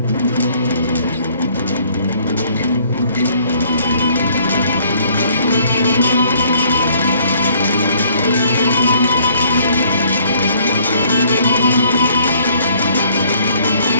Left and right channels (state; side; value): inverted; both; correlation -0.61